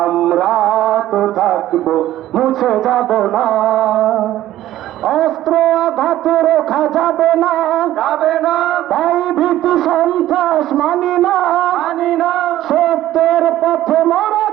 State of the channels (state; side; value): quieter; left; 13.9 dB